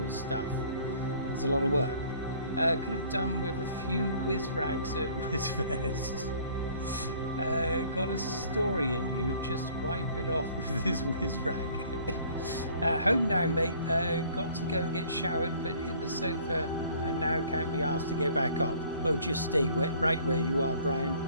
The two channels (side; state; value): both; inverted; correlation -0.55